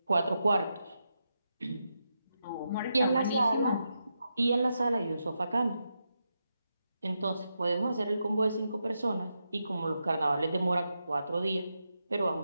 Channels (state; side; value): inverted; both; correlation -0.86